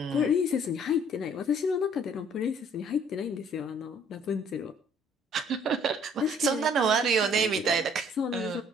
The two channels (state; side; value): normal; both; correlation 0.59